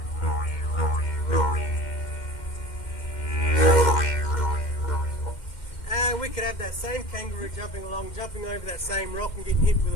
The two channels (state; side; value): late; right; 2.1 ms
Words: And we could have that same kangaroo jumping along, jumping over that same rock and getting hit with